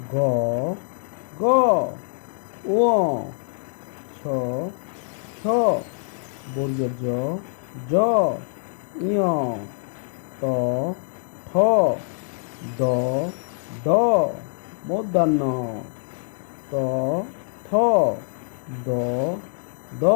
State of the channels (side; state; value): right; silent; digital silence